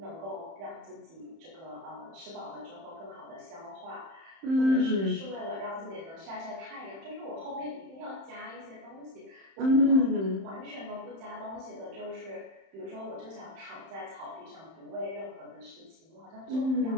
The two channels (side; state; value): left; late; 31 ms